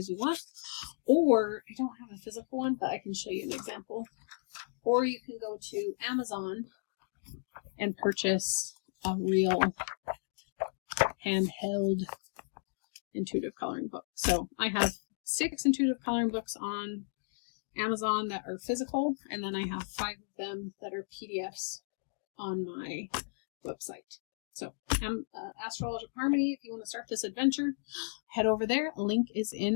you want, or I don't have a physical one, but I can show you an example. Or you can go to Amazon and purchase a real handheld intuitive coloring book. So I have 6 intuitive coloring books on Amazon that are physical, and then I have 5 of them that are PDFs on my website. So Astrological Harmony, if you want to start this adventure, head over there. A link is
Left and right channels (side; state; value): right; silent; digital silence